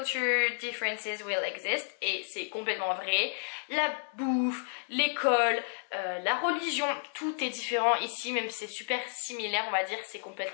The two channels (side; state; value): right; silent; digital silence